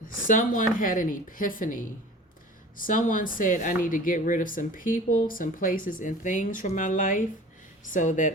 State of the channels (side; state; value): both; normal; correlation 0.41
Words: Someone had an epiphany. Someone said, I need to get rid of some people, some places, and things from my life, so